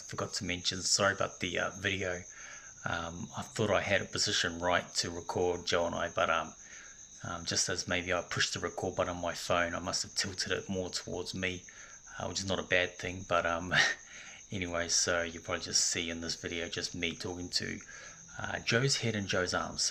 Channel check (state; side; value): identical; both; correlation 1.00